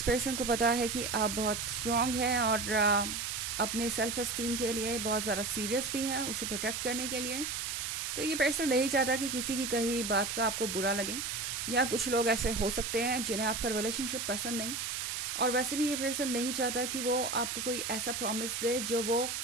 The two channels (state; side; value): noise; right; hiss, 3 dB below the sound